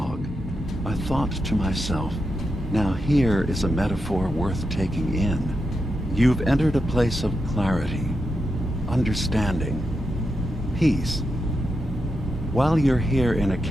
I thought to myself, now here is a metaphor worth taking in. You've entered a place of clarity, understanding, peace. While you're here in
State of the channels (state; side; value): normal; both; correlation 0.87